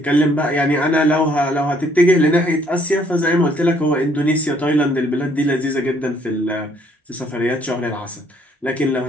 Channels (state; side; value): normal; both; correlation 0.65